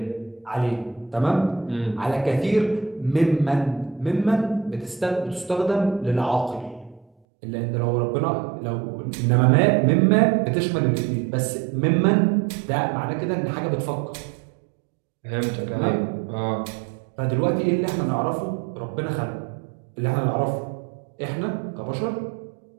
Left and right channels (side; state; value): left; drops out; at 7.1 s